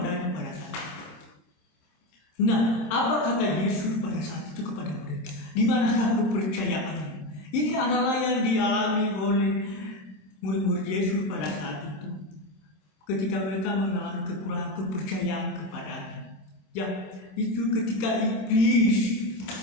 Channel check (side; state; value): right; late; 27 ms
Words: pada saat itu. Nah, apa kata Yesus pada saat itu kepada mereka? Di manakah kepercayaannya? Ini adalah yang dialami oleh murid-murid Yesus pada saat itu, ketika mereka mengalami kekurangan kepercayaan kepadanya. Ya, itu ketika iblis